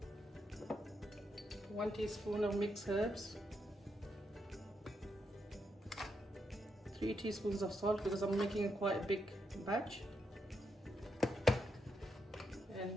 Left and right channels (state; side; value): normal; both; correlation 0.81